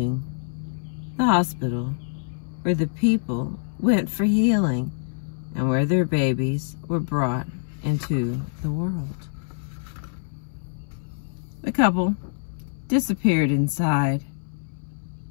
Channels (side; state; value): right; silent; 61 dB below the other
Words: the hospital, where the people went for healing and where their babies were brought into the world. The couple disappeared inside,